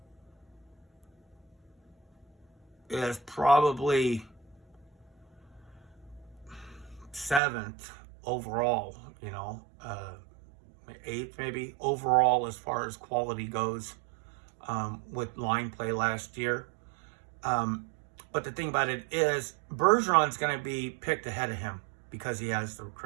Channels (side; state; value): left; drops out; at 7.4 s